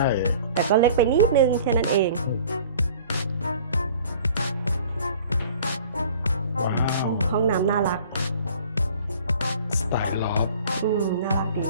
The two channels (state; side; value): inverted; both; correlation -0.48